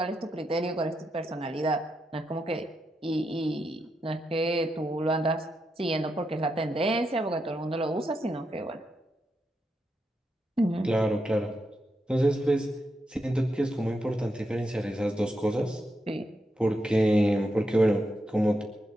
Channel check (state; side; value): normal; both; correlation 0.84